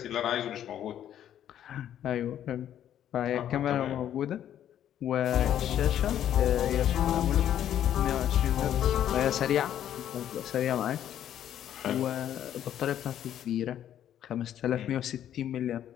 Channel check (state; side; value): quieter; right; 10.7 dB